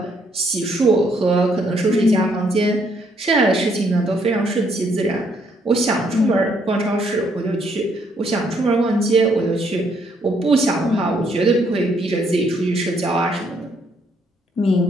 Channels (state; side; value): normal; both; correlation 0.70